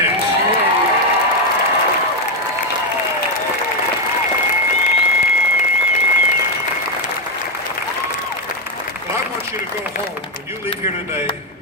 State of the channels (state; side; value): normal; both; correlation 0.04